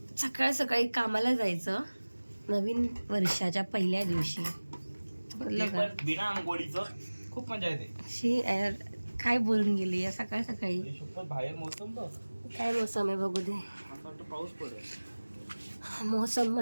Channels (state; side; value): inverted; both; correlation -1.00